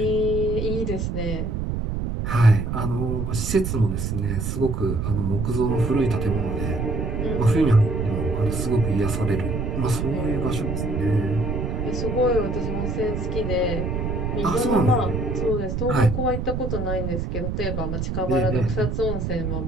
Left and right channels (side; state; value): right; noise; rumble, 2 dB below the sound